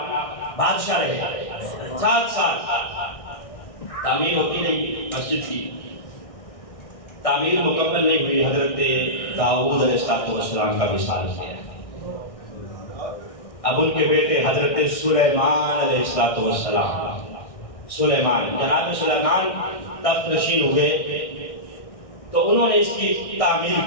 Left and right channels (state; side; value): late; right; 1.6 ms